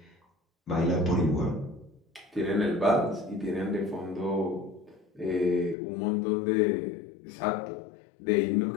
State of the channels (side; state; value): right; drops out; at 5.8 s